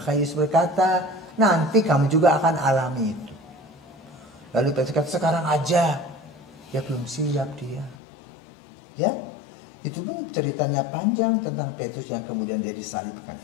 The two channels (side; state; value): right; drops out; at 8.0 s